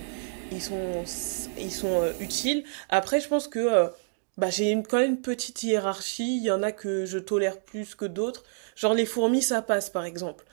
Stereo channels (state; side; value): silent; left; digital silence